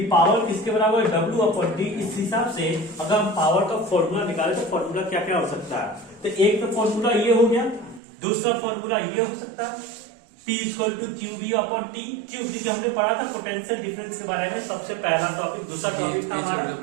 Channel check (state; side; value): drops out; left; at 8.0 s